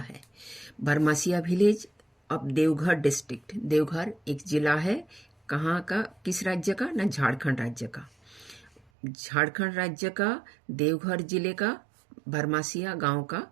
Barmasia village of Deoghar district, Deoghar एक जिला है, कहाँ का, किस राज्य का ना, झारखंड राज्य का। झारखंड राज्य का देवघर जिले का बरमासिया गांव का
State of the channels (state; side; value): drops out; left; at 8.8 s